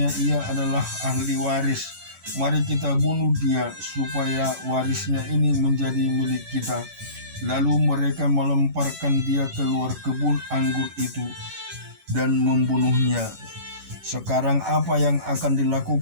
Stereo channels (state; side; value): late; left; 11 ms